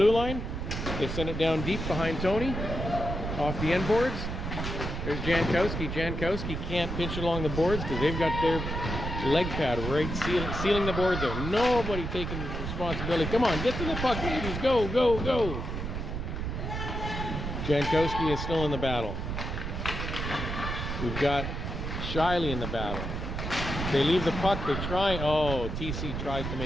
line. They send it down deep behind Tony. Off the end boards. There's Jankowski. Jankowski can't pinch it along the boards because they've got their leg pad right sealing the boards there. Nobody taking responsibility. Come on, get to the puck, ladies. Go, go, go. Jankowski is still in the battle. We've got Shiley in the battle. They leave the puck. They try. Oh, TC tries to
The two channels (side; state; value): right; noise; rumble, 4 dB below the sound